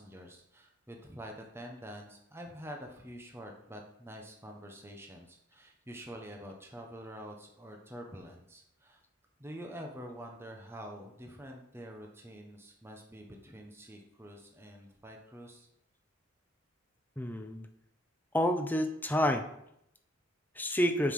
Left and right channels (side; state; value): both; normal; correlation 0.70